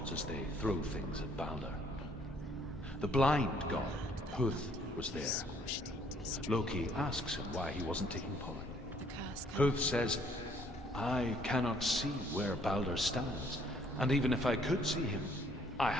as they throw things at Balder. The blind god, Huth, was there. Loki asks him why he wasn't taking part. The curse. Huth says, I cannot see where Balder stands, and even if I could see him, I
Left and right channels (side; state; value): both; normal; correlation 0.63